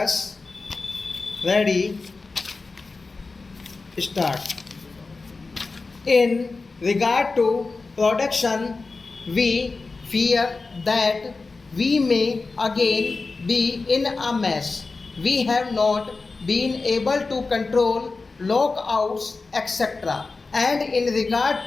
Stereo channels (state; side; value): quieter; right; 3.9 dB